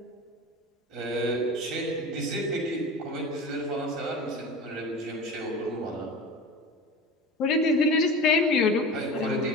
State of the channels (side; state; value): both; normal; correlation 0.32